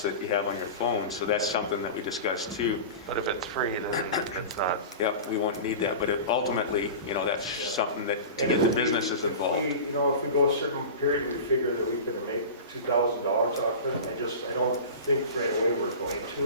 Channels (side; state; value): both; inverted; correlation -0.32